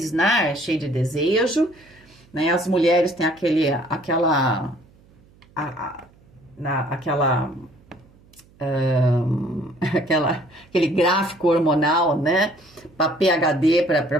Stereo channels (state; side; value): noise; right; hum, 29 dB below the sound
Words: né, cheio de desejo, né? As mulheres têm aquele gráfico hormonal, né, para PhD, para